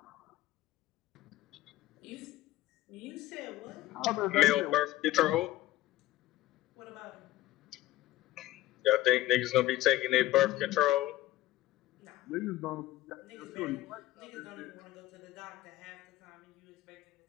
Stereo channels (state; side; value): quieter; right; 16.0 dB